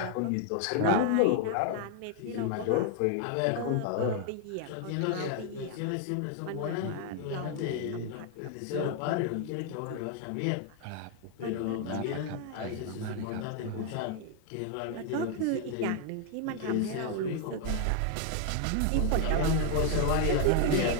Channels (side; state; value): both; different; correlation 0.00